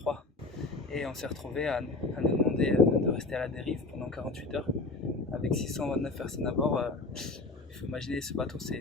et on s'est retrouvé à nous demander de rester à la dérive pendant 48 heures avec 629 personnes à bord. Il faut imaginer, ce bateau,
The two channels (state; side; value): quieter; right; 3.4 dB